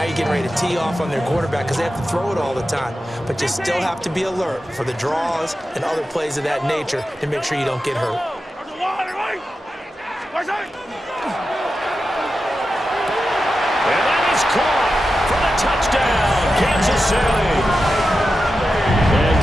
you're getting ready to tee off on their quarterback because they have to throw it all the time. But you still have to be alert for the draws and other plays of that nature to make sure you don't get hurt. And that is caught for the touchdown, Kansas City. And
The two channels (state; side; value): normal; both; correlation 0.91